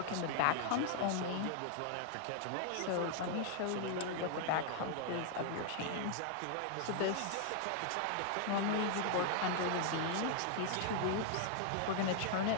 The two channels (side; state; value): both; different; correlation 0.00